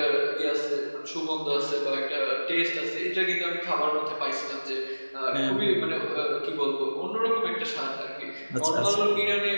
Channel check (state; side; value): inverted; both; correlation -1.00